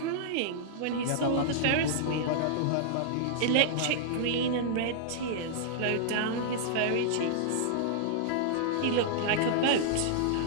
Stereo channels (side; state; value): both; different; correlation -0.01